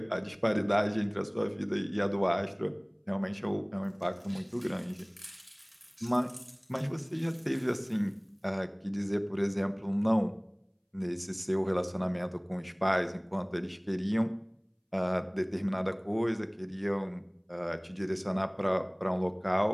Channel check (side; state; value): both; identical; correlation 1.00